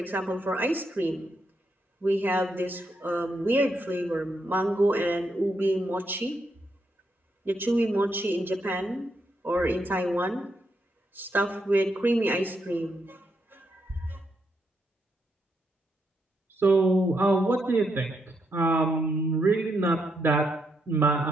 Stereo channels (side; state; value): both; normal; correlation 0.80